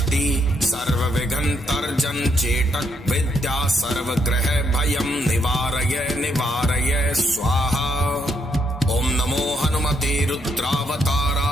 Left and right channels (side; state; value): both; normal; correlation 0.75